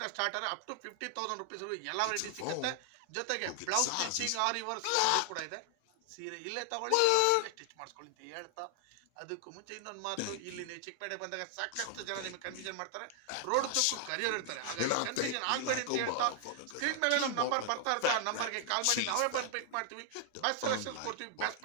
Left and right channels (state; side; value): different; both; correlation 0.00